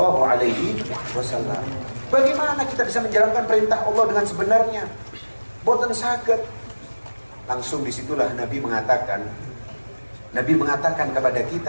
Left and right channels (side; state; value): both; inverted; correlation -1.00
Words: alaihi wasallam? Bagaimana kita bisa menjalankan perintah Allah dengan sebenarnya? Boten saged. Langsung disitulah Nabi mengatakan kepada